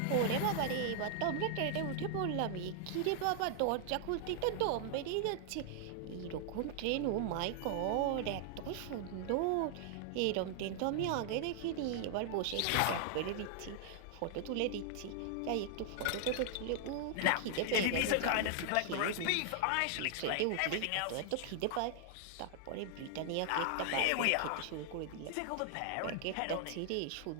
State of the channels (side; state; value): both; different; correlation 0.00